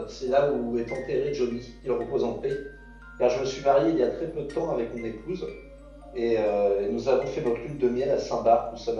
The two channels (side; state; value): both; identical; correlation 1.00